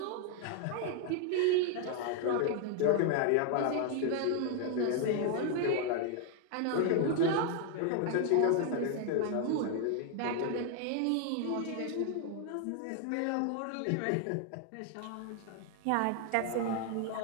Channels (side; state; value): both; different; correlation 0.00